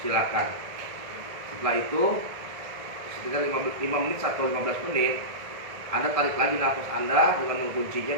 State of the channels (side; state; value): left; late; 1.7 ms